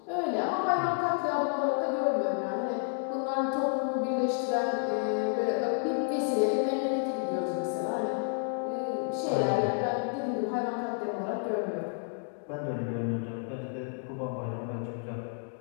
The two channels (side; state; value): right; silent; 57 dB below the other